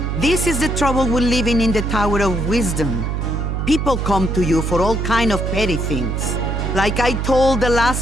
this is the trouble with living in the Tower of Wisdom. People come to you for all kind of petty things. Like I told the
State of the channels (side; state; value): right; noise; hum, 1 dB below the sound